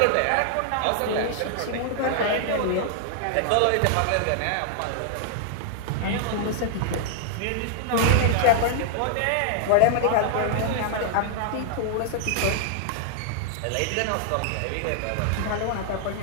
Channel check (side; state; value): both; different; correlation -0.01